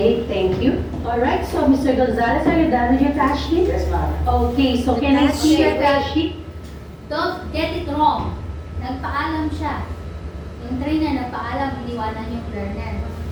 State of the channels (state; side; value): identical; both; correlation 1.00